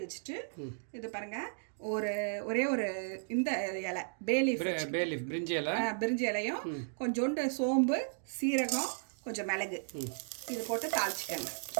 வச்சுட்டு இது பாருங்க, ஒரே ஒரு இந்த இலை பேலீஃப் பிரிஞ்சி இலையும் கொஞ்சோண்டு சோம்பு, சீரகம், கொஞ்சம் மிளகு இது போட்டு தாளிச்சிக்கோங்க.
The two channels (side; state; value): left; silent; digital silence